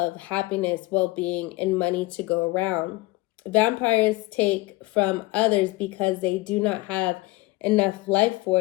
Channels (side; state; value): right; quieter; 21.3 dB